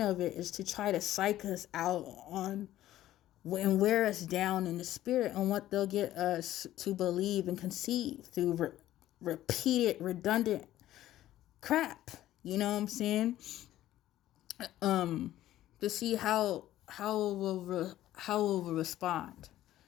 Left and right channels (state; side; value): quieter; right; 13.8 dB